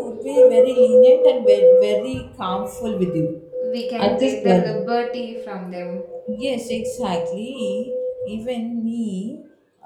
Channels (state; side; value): identical; both; correlation 1.00